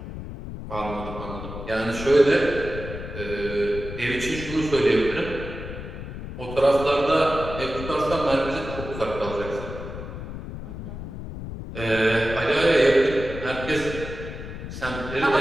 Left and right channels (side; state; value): left; noise; rumble, 9 dB below the sound